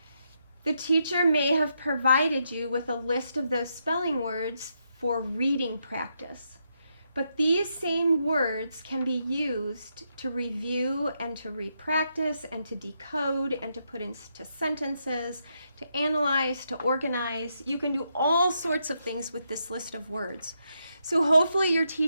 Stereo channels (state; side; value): inverted; both; correlation -0.81